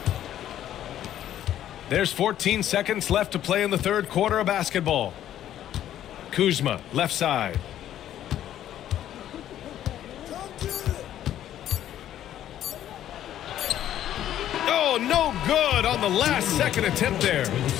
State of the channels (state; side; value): quieter; right; 11.6 dB